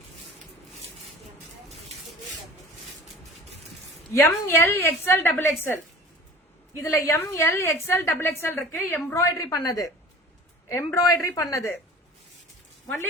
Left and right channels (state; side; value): normal; both; correlation 0.42